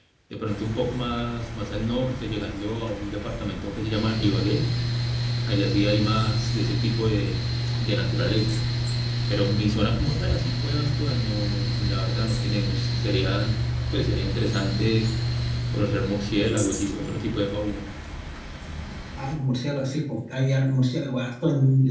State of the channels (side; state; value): both; identical; correlation 1.00